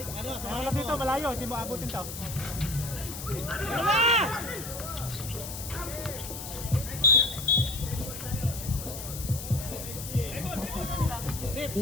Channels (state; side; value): noise; left; hiss, 9 dB below the sound